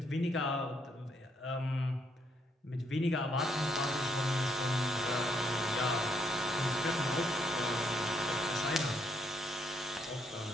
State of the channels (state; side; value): normal; both; correlation 0.74